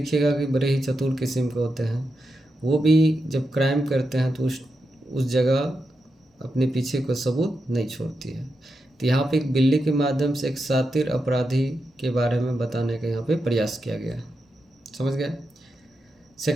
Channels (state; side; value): normal; both; correlation 0.87